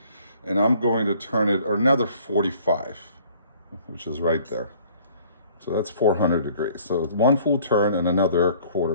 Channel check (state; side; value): inverted; both; correlation -0.56